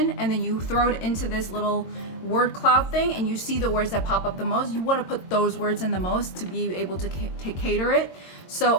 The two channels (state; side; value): late; right; 22 ms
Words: and then you throw it into this little word cloud thing and you see the words that pop up the most. You want to put those words in the most to be able to cater it.